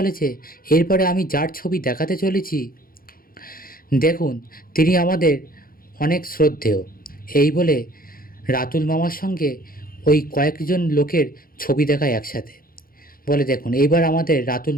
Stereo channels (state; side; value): late; right; 0.42 ms